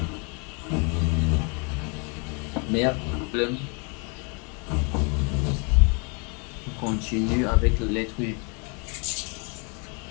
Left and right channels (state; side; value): quieter; right; 34.1 dB